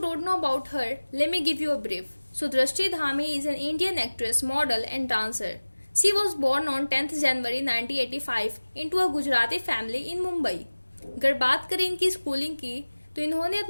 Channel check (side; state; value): both; inverted; correlation -1.00